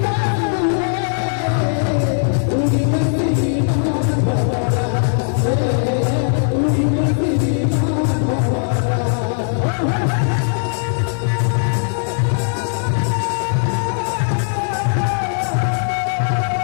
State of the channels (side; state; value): right; silent; digital silence